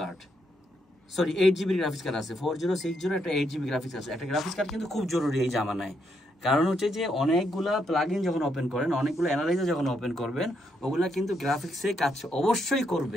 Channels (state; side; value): normal; both; correlation 0.77